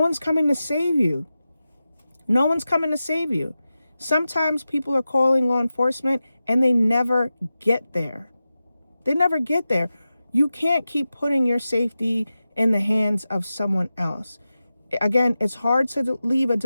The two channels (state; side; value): inverted; both; correlation -0.93